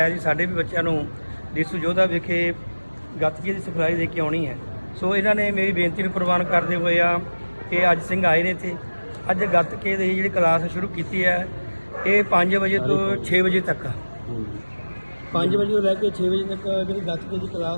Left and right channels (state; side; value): inverted; both; correlation -1.00